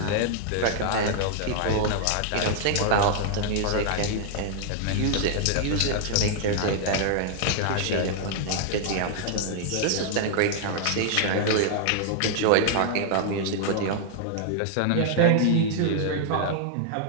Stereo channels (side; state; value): both; different; correlation -0.01